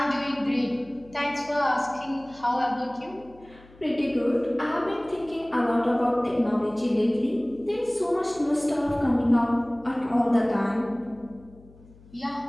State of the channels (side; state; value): left; noise; hum, 24 dB below the sound